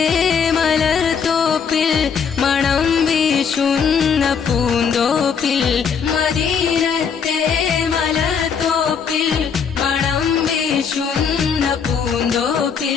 മലർത്തോപ്പിൽ മണം വീശുന്ന പൂന്തോപ്പിൽ മദീനത്തെ മലർത്തോപ്പിൽ മണം വീശുന്ന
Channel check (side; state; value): right; quieter; 6.7 dB